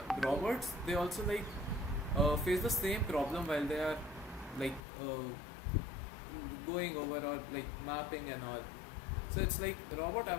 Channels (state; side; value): drops out; right; at 4.8 s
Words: robots, they also like face the same problem while they are like going over or like mapping and all. So it's like robot